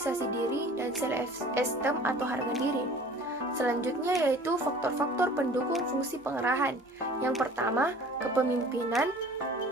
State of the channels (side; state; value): both; normal; correlation 0.46